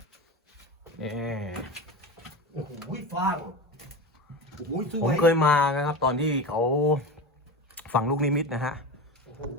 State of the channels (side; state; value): both; normal; correlation 0.26